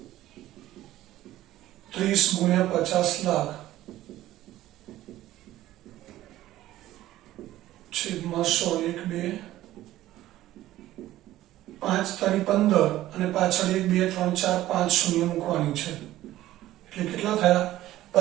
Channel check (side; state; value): left; quieter; 14.8 dB